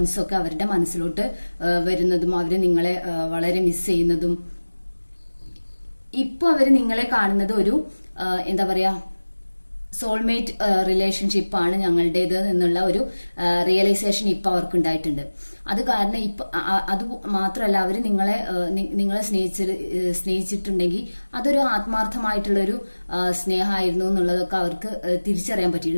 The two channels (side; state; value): both; inverted; correlation -1.00